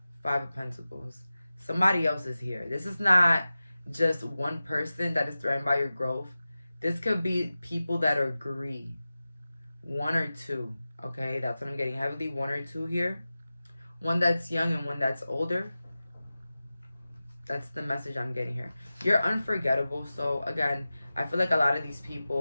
5 of Pentacles. Somebody else is here. This is not just one person that is threatened by your growth. This could be people that agree. 1 or 2. Okay, that's what I'm getting. Heavily 1 or 2 here. One that's young and one that's older. That's the message I'm getting here. You're unforgettable. So again, I feel like a lot of these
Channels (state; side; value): inverted; both; correlation -0.95